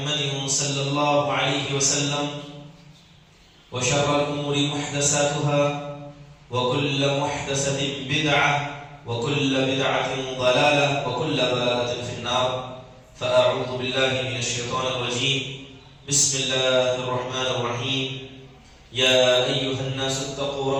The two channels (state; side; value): identical; both; correlation 1.00